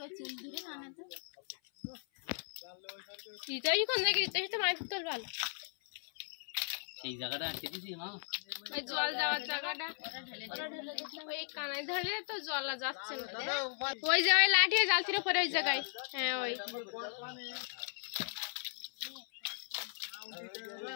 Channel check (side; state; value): right; silent; 53 dB below the other